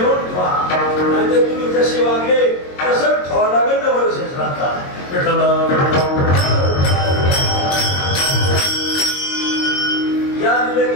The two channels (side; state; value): right; late; 22 ms